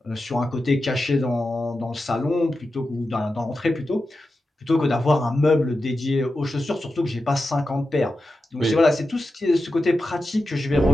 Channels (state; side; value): normal; both; correlation 0.91